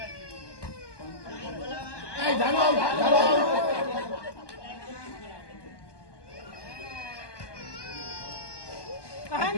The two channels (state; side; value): late; right; 1.2 ms